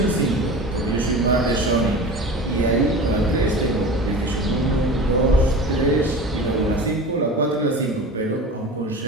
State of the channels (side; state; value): both; normal; correlation 0.34